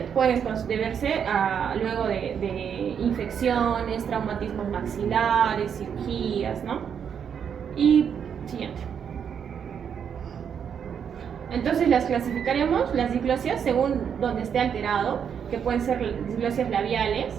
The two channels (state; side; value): quieter; left; 7.7 dB